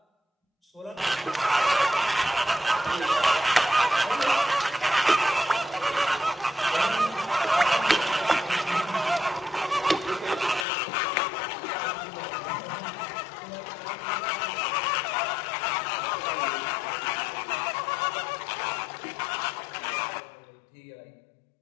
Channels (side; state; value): right; drops out; at 10.7 s